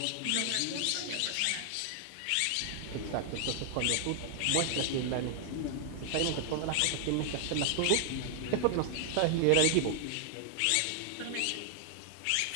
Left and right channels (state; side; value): different; both; correlation 0.00